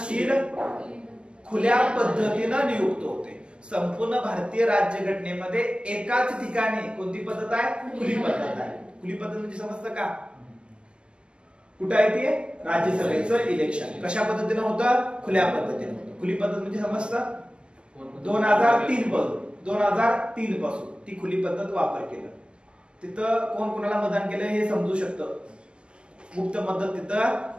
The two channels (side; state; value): left; late; 0.057 ms